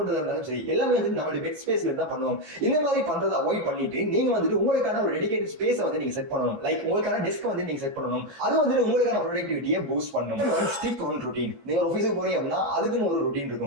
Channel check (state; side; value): late; left; 15 ms